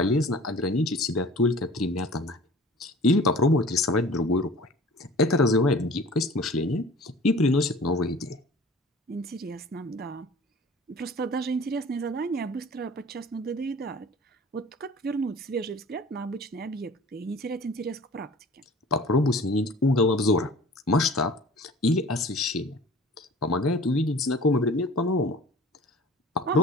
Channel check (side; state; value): both; normal; correlation 0.45